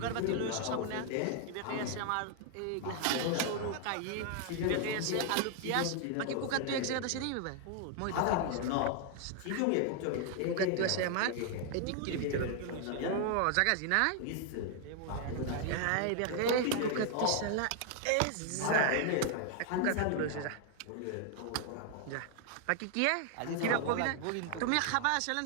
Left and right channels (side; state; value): both; different; correlation 0.00